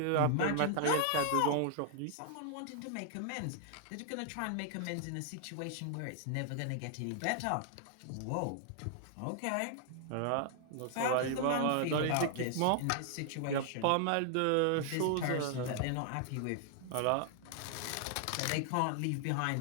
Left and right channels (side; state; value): both; different; correlation 0.00